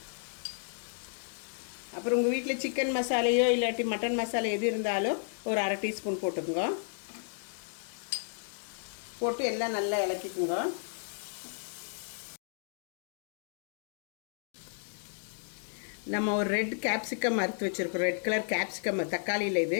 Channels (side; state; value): right; silent; digital silence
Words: அப்புறம் உங்கள் வீட்டில் சிக்கன் மசாலையோ இல்லாட்டி மட்டன் மசாலா எது இருந்தாலும் ஒரு 1/2 டீஸ்பூன் போட்டுக்குங்க. போட்டு எல்லாம் நல்லா இலக்கிக்குங்க. நம்ம ஒரு ரெட் கேப்சிகம் அறுத்து வச்சுருக்கோம், ரெட் கலர் கேப்சிகம், தக்காளியில் இது